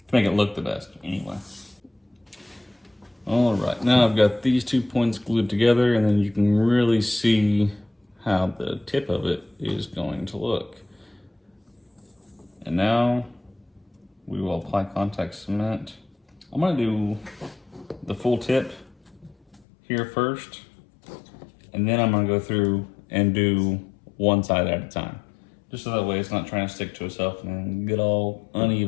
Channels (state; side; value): drops out; right; at 19.6 s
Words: make it look the best anyway. All right, now I've got these 2 points glued together, and then you can really see how the tip of it is going to look. And now we will apply contact cement. I'm gonna do the full tip here first, and then I'm gonna go through and do one side at a time, just so that way it's not trying to stick to itself and get all